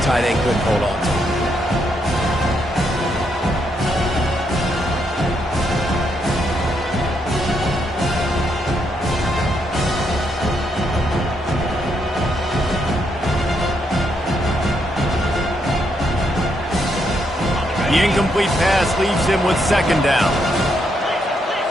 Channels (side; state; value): both; normal; correlation 0.77